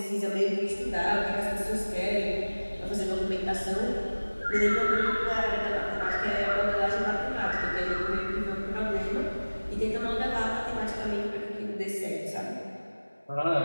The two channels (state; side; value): inverted; both; correlation -1.00